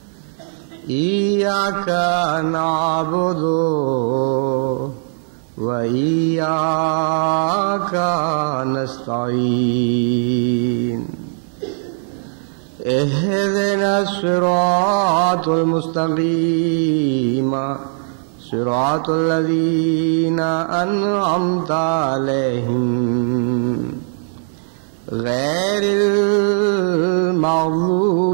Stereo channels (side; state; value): left; silent; digital silence